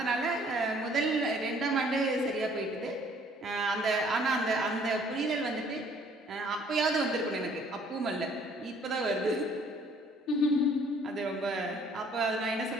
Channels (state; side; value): normal; both; correlation 0.59